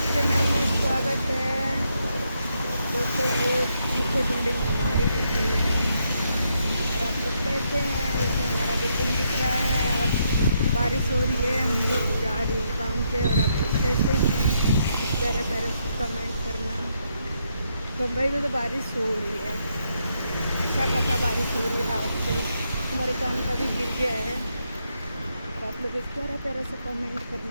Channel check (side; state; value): both; inverted; correlation -0.78